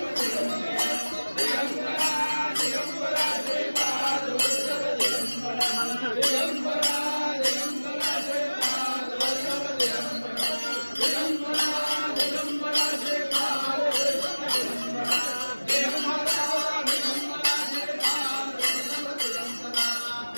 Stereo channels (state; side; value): inverted; both; correlation -1.00